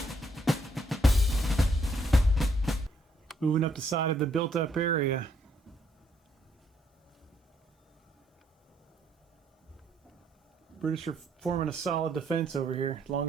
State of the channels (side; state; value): both; normal; correlation 0.71